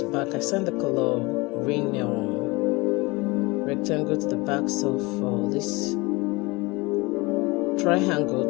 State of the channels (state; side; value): quieter; right; 24.5 dB